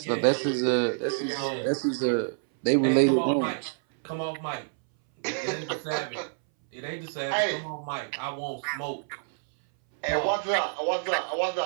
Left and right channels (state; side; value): silent; left; 60 dB below the other